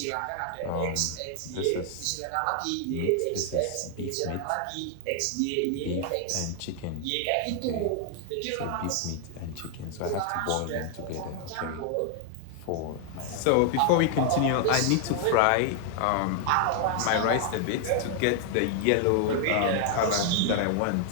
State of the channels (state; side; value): different; both; correlation 0.00